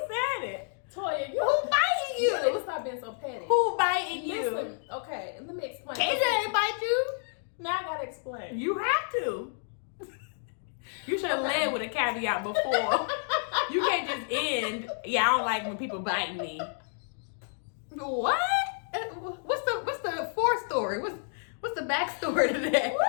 said it. Toya, Who biting you? Let's stop being so petty. Who biting you? Listen, okay, let me explain. KJ ain't bite you. Now I gotta explain. You have to. You should have led with a caveat before. You can't just end. Yeah, I don't like when people bite me. What? What's the forestory? What's the backstory to that? Woo!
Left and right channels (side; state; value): right; silent; digital silence